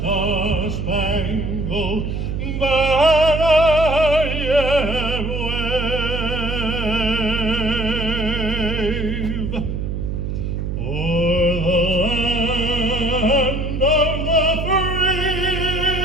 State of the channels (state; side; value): noise; right; hum, 3 dB below the sound